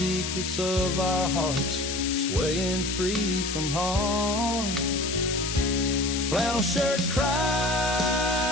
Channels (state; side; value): noise; left; hiss, 4 dB below the sound